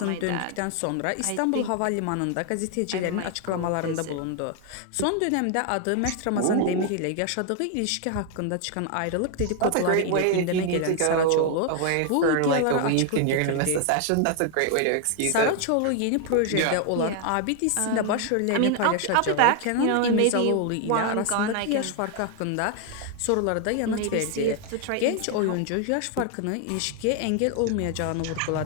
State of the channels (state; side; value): different; both; correlation 0.00